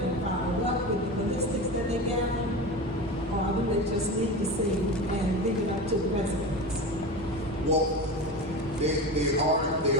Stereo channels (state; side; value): normal; both; correlation 0.27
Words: and follow up with the ballistics that they gather? Or do they just leave the scene and leave it up to the residents? Well, they